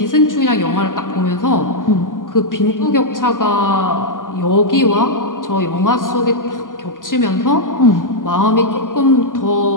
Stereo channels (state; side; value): late; right; 0.89 ms